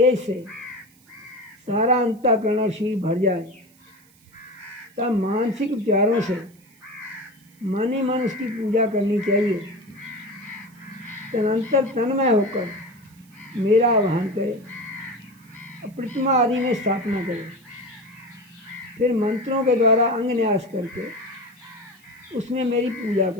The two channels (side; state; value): right; noise; hiss, 29 dB below the sound